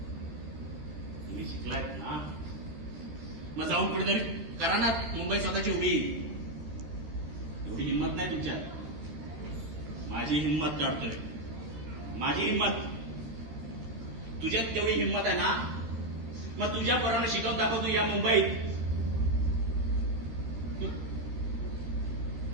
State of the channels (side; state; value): left; late; 13 ms